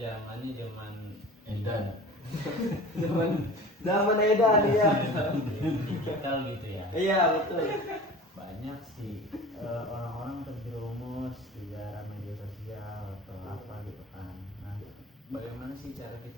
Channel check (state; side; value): normal; both; correlation 0.39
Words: zaman Edan. Zaman edan ya. digital gitu ya. Iya betul. Banyak sih orang-orang terjerumus di dalam media sosial atau apa gitu kan. Nah, bagaimana sih cara